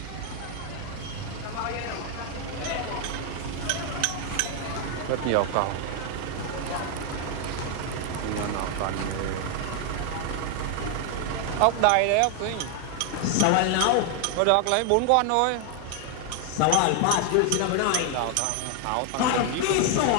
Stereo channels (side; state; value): both; different; correlation 0.00